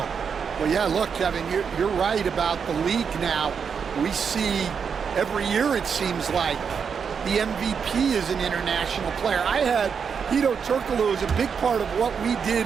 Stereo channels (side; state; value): left; quieter; 6.5 dB